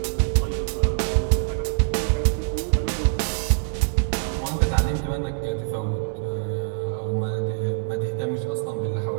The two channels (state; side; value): silent; left; digital silence